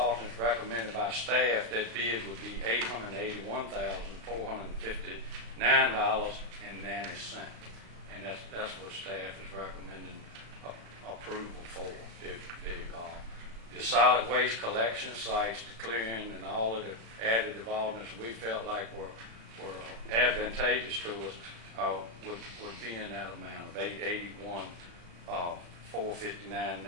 recommended by staff, that bid would be $881,459.90, and that's what staff is recommending approval for. The solid waste collection sites, the clearing, and all of the additive alternates we felt like were advantageous to us would be in that amount of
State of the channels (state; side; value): late; left; 35 ms